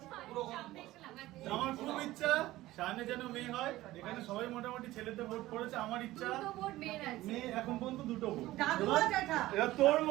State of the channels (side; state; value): left; quieter; 16.7 dB